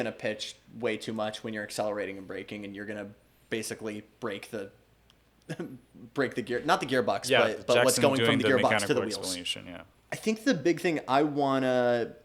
pitch way too much when you're accelerating and braking, and you're gonna basically break the gear, not the gearbox, Yeah, but what's Jackson going doing from the gearbox to mechanical the wheels. explanation, yeah. I think the big thing I wanna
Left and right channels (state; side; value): identical; both; correlation 1.00